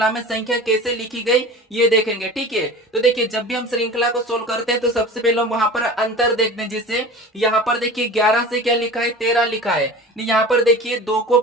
में संख्या कैसे लिखी गई ये देखेंगे। ठीक है, तो देखिए जब भी हम श्रृंखला को सोल्व करते हैं तो सबसे पहले हम वहां पर अंतर देखते हैं। जैसे यहाँ पर देखिए 11 से क्या लिखा है, 13 लिखा है। यहाँ पर देखिए 2 को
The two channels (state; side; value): normal; both; correlation 0.36